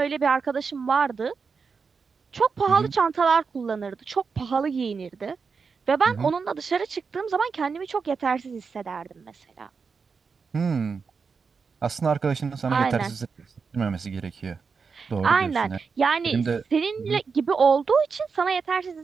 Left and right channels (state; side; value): quieter; left; 5.3 dB